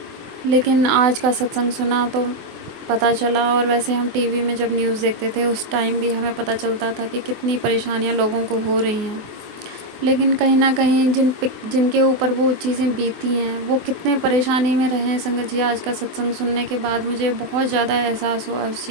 लेकिन आज का सत्संग सुना तो पता चला, और वैसे हम टीवी में जब न्यूज़ देखते थे उस टाइम भी हमें पता चलता था कि कितनी परेशानियां लोगों को हो रही हैं। लेकिन कहीं ना कहीं जिनके ऊपर वो चीज़ें बीती हैं वो कितने परेशानी में रहे हैं संगत जी। आज का सत्संग सुनने के बाद मुझे बहुत ज़्यादा एहसास हुआ उस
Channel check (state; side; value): late; left; 24 ms